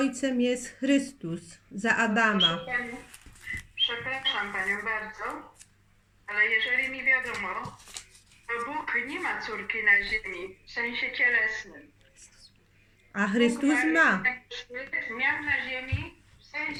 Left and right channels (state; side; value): identical; both; correlation 1.00